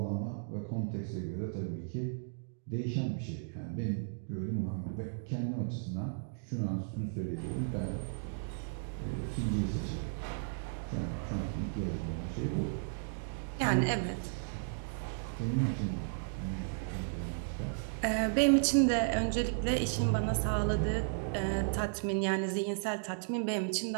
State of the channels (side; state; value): left; silent; digital silence